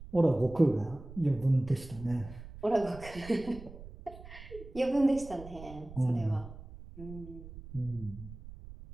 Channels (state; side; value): noise; right; rumble, 15 dB below the sound